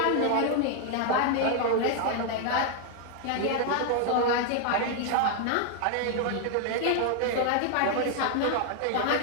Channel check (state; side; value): different; both; correlation 0.00